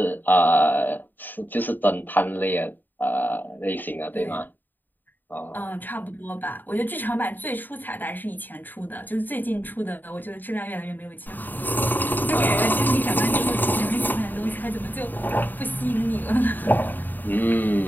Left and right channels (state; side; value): late; right; 0.090 ms